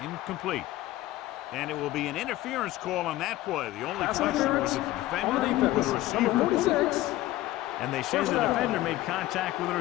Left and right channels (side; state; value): right; quieter; 16.2 dB